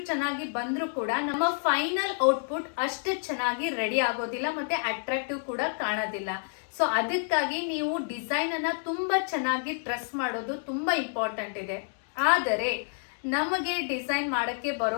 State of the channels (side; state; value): right; silent; digital silence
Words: ಚೆನ್ನಾಗಿ ಬಂದ್ರೂ ಕೂಡ ನಮ್ಮ ಫೈನಲ್ ಔಟ್ಪುಟ್ ಅಷ್ಟು ಚೆನ್ನಾಗಿ ರೆಡಿ ಆಗೋದಿಲ್ಲ ಮತ್ತೆ ಅಟ್ರಾಕ್ಟಿವ್ ಕೂಡ ಕಾಣೋದಿಲ್ಲ. ಸೊ ಅದಕ್ಕಾಗಿ ನೀವು ಡಿಸೈನ್ ಅನ್ನ ತುಂಬಾ ಚೆನ್ನಾಗಿ ಟ್ರೇಸ್ ಮಾಡೋದು ತುಂಬಾ ಇಂಪಾರ್ಟೆಂಟ್ ಇದೆ. ಆದರೆ ನಮಗೆ ಡಿಸೈನ್ ಮಾಡಕ್ಕೆ